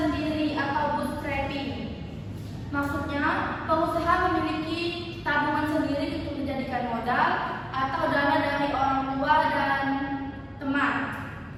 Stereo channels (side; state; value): both; identical; correlation 1.00